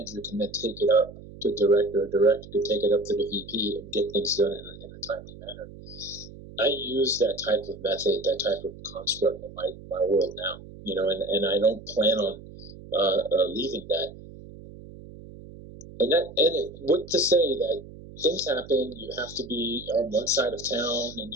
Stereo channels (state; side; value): noise; right; hum, 16 dB below the sound